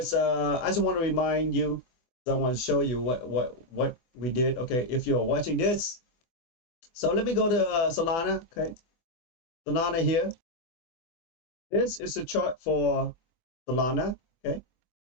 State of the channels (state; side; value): late; right; 24 ms